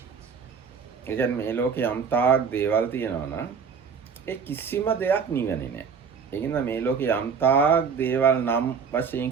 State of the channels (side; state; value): left; quieter; 6.2 dB